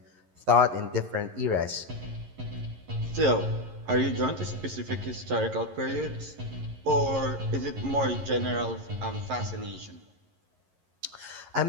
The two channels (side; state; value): left; late; 11 ms